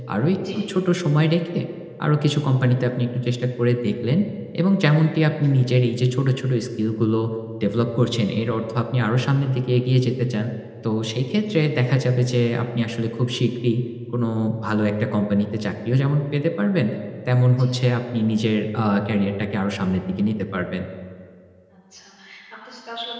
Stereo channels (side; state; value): both; identical; correlation 1.00